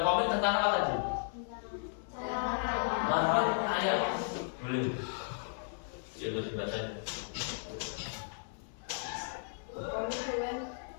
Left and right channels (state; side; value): silent; right; 55 dB below the other